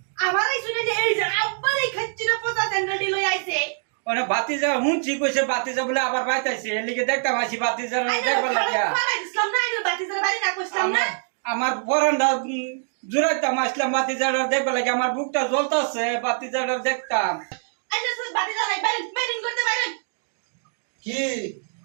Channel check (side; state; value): left; silent; 63 dB below the other